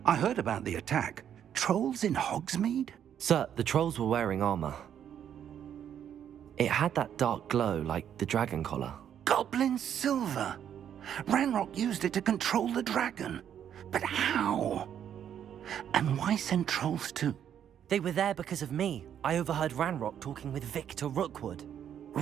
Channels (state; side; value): quieter; left; 9.4 dB